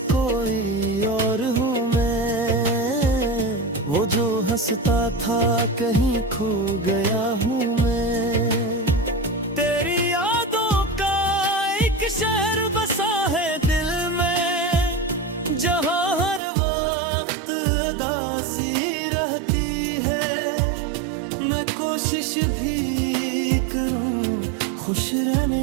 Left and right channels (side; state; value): left; drops out; at 16.4 s